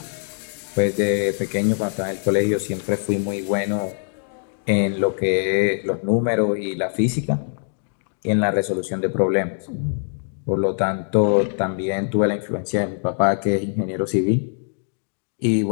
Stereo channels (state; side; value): silent; right; digital silence